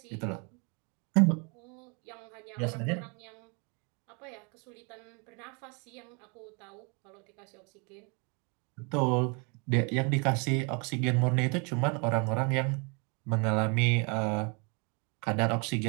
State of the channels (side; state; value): left; quieter; 33.6 dB